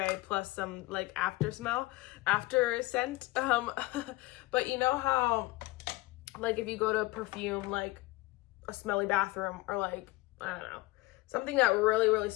plus some like after scent. But you know how like if you go to perfume like a smelly bathroom, or like I don't know, something that really, really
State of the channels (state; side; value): quieter; right; 20.5 dB